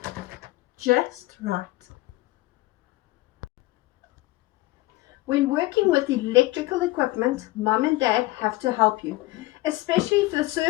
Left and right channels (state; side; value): quieter; right; 19.4 dB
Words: just right. When working with electrical equipment, Mom and Dad have to help you, especially if the